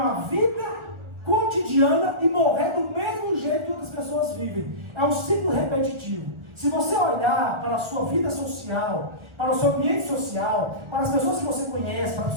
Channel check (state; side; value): late; left; 1.4 ms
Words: vida cotidiana e morrer do mesmo jeito que outras pessoas vivem. É um ciclo repetitivo. Se você olhar para a sua vida social, para o seu ambiente social, para as pessoas que você conhece, para as